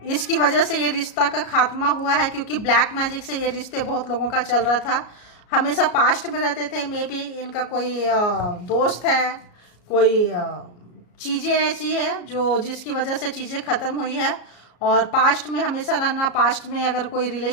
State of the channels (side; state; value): right; late; 33 ms